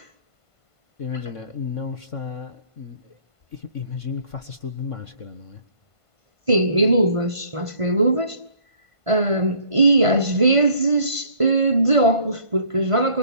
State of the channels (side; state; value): right; late; 1.5 ms